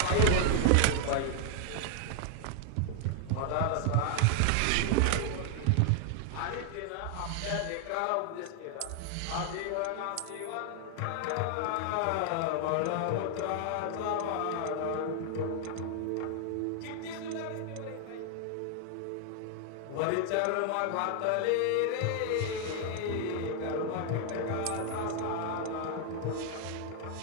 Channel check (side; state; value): both; different; correlation 0.00